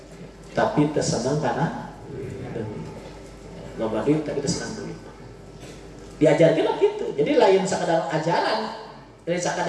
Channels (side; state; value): both; identical; correlation 1.00